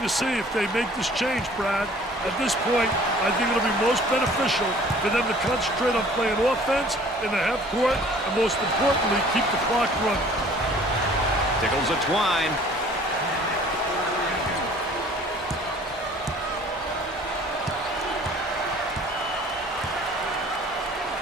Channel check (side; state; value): both; normal; correlation 0.52